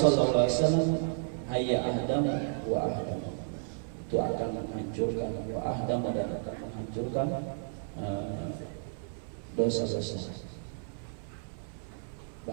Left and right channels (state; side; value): silent; left; 56 dB below the other